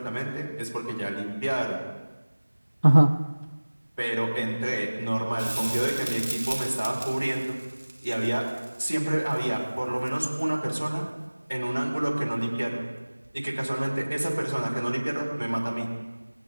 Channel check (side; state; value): both; inverted; correlation -1.00